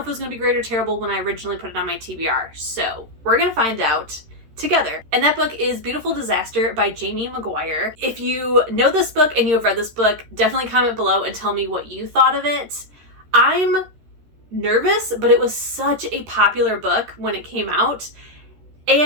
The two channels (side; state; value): left; late; 13 ms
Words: it was going to be great or terrible when I originally put it on my TBR, so we're going to find out together. And that book is Beautiful Disaster by Jamie McGuire. If you know this book and you have read this book, definitely comment below and tell me what you thought of it. I'm nervous, but it was such a popular book when it came out,